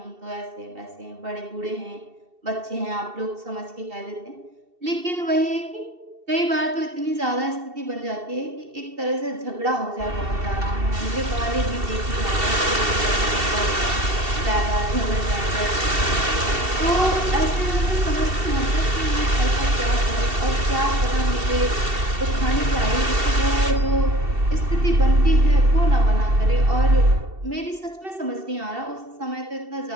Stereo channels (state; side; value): late; left; 2.7 ms